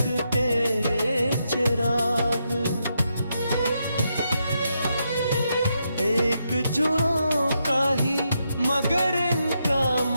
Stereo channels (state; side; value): inverted; both; correlation -0.82